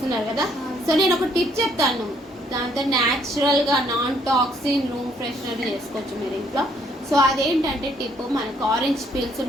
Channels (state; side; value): normal; both; correlation 0.67